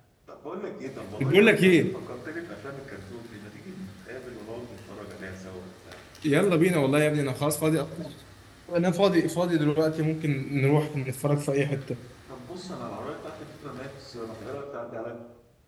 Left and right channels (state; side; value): identical; both; correlation 1.00